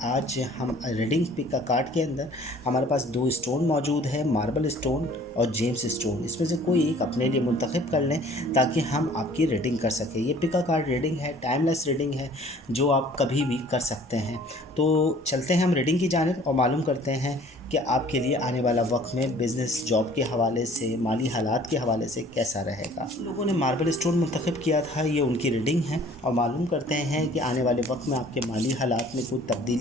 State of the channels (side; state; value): both; normal; correlation 0.53